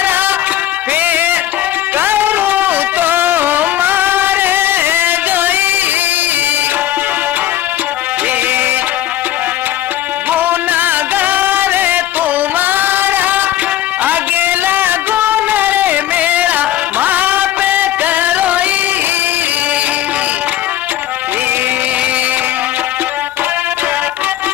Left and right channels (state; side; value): quieter; right; 12.9 dB